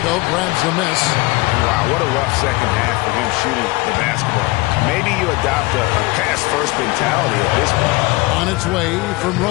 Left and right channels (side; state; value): right; quieter; 22.8 dB